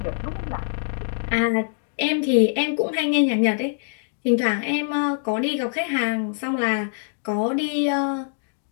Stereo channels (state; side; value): silent; right; digital silence